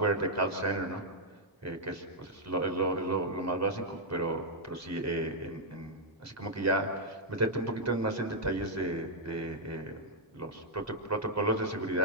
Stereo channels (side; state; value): both; normal; correlation -0.05